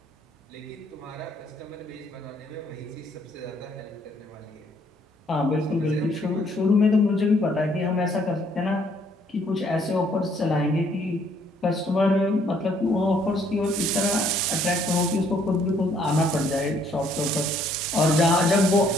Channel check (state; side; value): normal; both; correlation 0.65